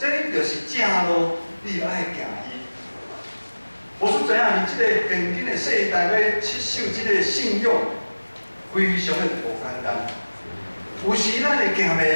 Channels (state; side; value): inverted; both; correlation -1.00